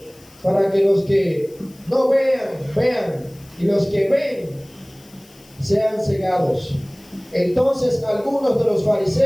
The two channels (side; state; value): left; noise; hiss, 26 dB below the sound